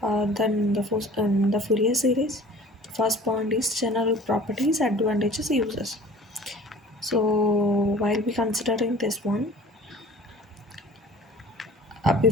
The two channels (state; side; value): normal; both; correlation 0.45